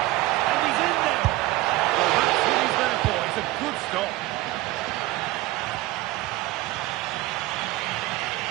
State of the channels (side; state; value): left; quieter; 18.0 dB